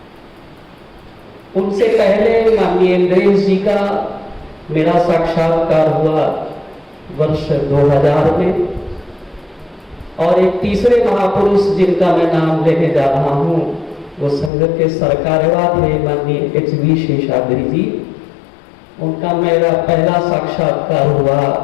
उनसे पहले माननीय इंद्रेश जी का मेरा साक्षात्कार हुआ वर्ष 2000 में। और एक तीसरे महापुरुष जिनका मैं नाम लेने जा रहा हूं वो संघ के सरकारवा थे माननीय एच.वी. शेषाद्री जी। उनका मेरा पहला साक्षात्कार हुआ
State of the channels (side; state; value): right; drops out; at 14.5 s